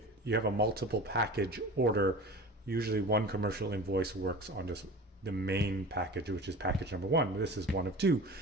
you have a multiple package order, usually one commercial invoice works on just the main package, which is package number one. This is one of two,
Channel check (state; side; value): normal; both; correlation 0.35